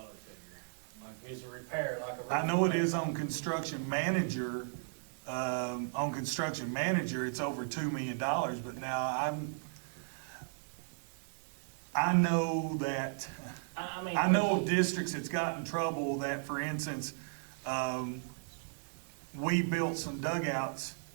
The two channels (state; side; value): silent; left; digital silence